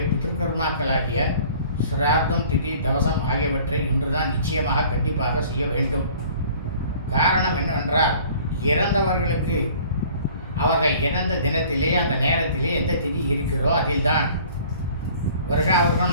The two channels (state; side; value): inverted; both; correlation -0.50